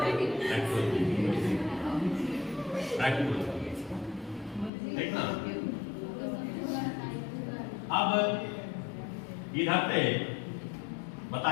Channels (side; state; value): right; drops out; at 4.7 s